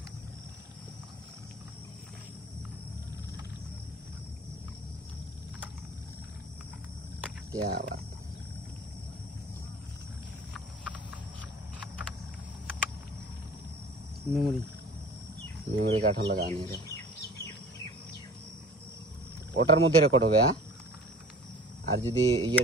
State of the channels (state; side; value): normal; both; correlation 0.44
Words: क्या बात मेमोरी काठ लगाने रे ओटार मध्य रेकर्ड होबे और जुदी ये